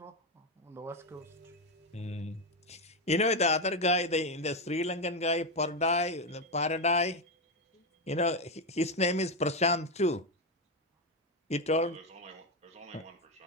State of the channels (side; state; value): both; normal; correlation 0.09